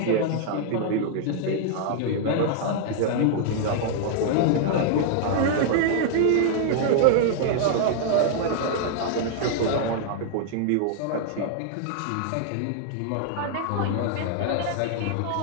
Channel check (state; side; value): different; both; correlation -0.01